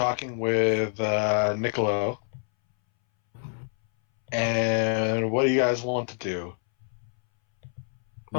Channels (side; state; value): right; silent; 60 dB below the other